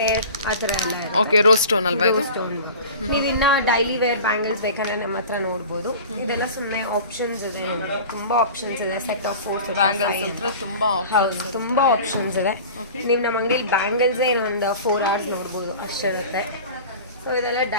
ಆ ಥರ ಎಲ್ಲ ಇದೆ. ಓಕೆ. ರೋಸ್ ಸ್ಟೋನ್ ಅಲ್ವಾ ಇದು? ಸ್ಟೋನ್. ನೀವು ಇನ್ನ ಡೈಲಿ ವೇರ್ ಬ್ಯಾಂಗಲ್ಸ್ ಬೇಕಂದ್ರೆ ನಮ್ಮ ಹತ್ರ ನೋಡ್ಬೋದು. ಇದೆಲ್ಲ ಸುಮ್ಮನೆ ಆಪ್ಷನ್ಸ್ ಇದೆ, ತುಂಬಾ ಆಪ್ಷನ್ಸ್ ಇದೆ. ಸೆಟ್ ಆಫ್ 4 ಬ್ಯಾಂಗಲ್ಸ್ ಹತ್ರ ತುಂಬಾ ಆಪ್ಷನ್ಸ್ ಇದೆ. ನೀವು ನಮ್ಮ ಅಂಗಡಿಯಲ್ಲಿ ಬ್ಯಾಂಗಲ್ಸೇ ಇನ್ನೊಂದು 4 hours ನೋಡ್ಬೋದು ಅಷ್ಟಿರುತ್ತೆ. ಸೊ ಇದೆಲ್ಲ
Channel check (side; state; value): both; inverted; correlation -0.38